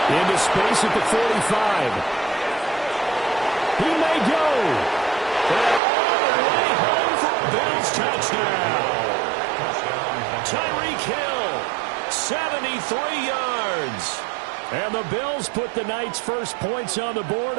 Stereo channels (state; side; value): drops out; left; at 5.8 s